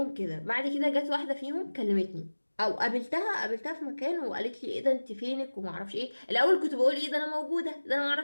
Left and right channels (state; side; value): inverted; both; correlation -1.00